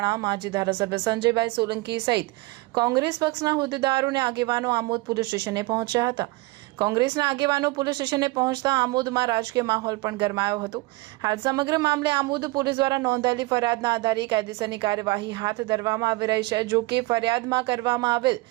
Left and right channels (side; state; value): left; quieter; 22.3 dB